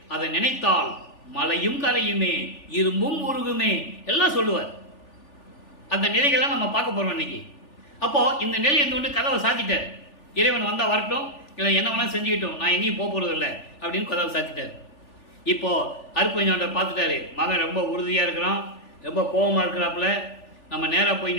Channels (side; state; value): right; late; 3.4 ms